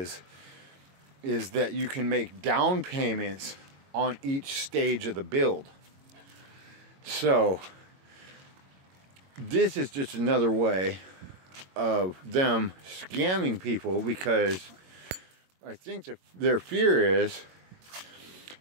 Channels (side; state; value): left; late; 22 ms